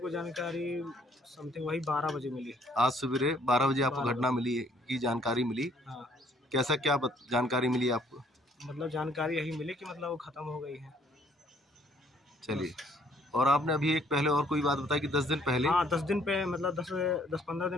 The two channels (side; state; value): both; normal; correlation 0.63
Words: जानकारी समथिंग वही 12 बजे मिली। आज सवेरे 12 बजे आपको घटना मिली की जानकारी मिली? हाँ। कैसा क्या जानकारी मिली आपको? मतलब जानकारी यही मिली कि मतलब वो ख़त्म हो गई है। चलिए, और आपने अभी एक पहले और कोई बात बताई कि 10 दिन पहले? हाँ, 10 दिन पे मतलब 10-15